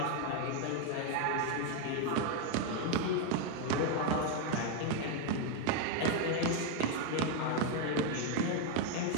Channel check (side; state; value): both; different; correlation 0.01